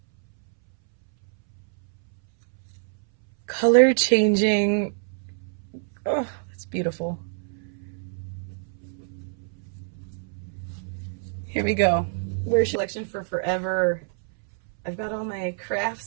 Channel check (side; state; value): left; silent; 61 dB below the other